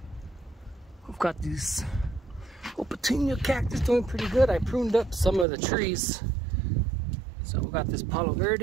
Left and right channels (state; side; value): drops out; left; at 5.5 s